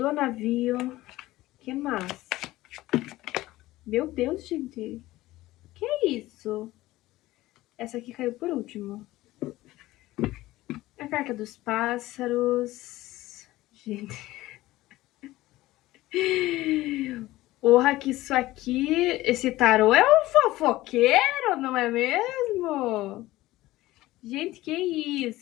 navio. Que mais? Meu Deus, gente. Que é isso? Essa aqui caiu por último. A carta dos pássaros. Gente. Porra, que isso aqui. Esse tarô é um fofoqueiro, não é mesmo? Gente, que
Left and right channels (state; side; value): quieter; right; 17.3 dB